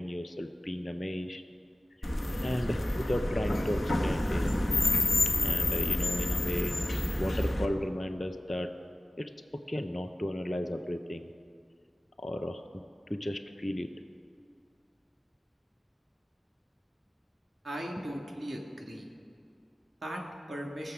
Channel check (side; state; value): both; normal; correlation 0.96